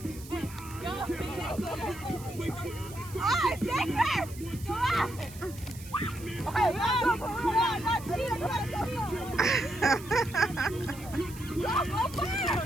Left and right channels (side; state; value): right; noise; hiss, 17 dB below the sound